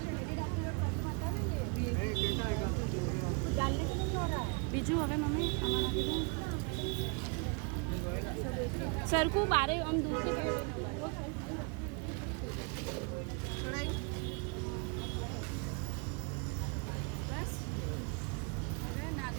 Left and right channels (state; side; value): quieter; left; 34.0 dB